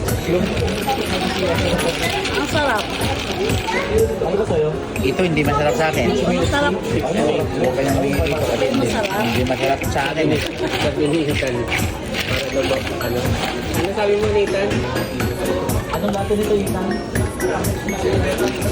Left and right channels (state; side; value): identical; both; correlation 1.00